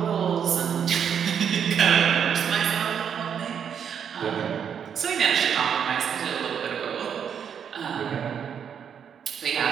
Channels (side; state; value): left; quieter; 7.9 dB